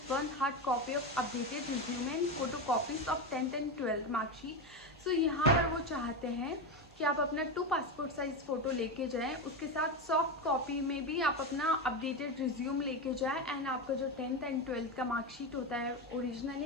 1 hard copy of updated resume and photocopies of 10th and 12th mark sheet. यहाँ पर वो चाहते हैं कि आप अपना 2 पासपोर्ट साइज फ़ोटो लेके जाएं, उसके साथ सॉफ्ट कॉपी में भी आप अपना अपडेटेड रिज्यूम लेके जाएं एंड आपका जो 10th एंड 12th का मार्कशीट होता है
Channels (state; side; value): normal; both; correlation 0.15